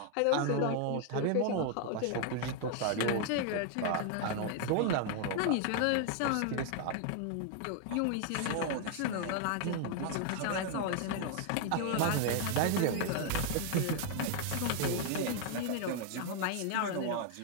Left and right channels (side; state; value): both; different; correlation 0.00